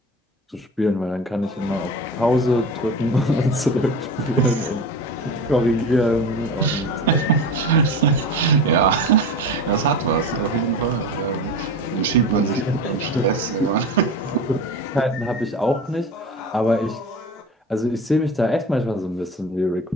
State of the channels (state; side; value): normal; both; correlation 0.31